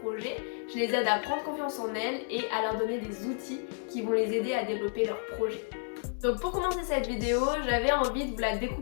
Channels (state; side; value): silent; right; digital silence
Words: Je les aide à prendre confiance en elles et à leur donner des outils qui vont les aider à développer leurs projets. Donc pour commencer cette vidéo, j'avais envie de vous la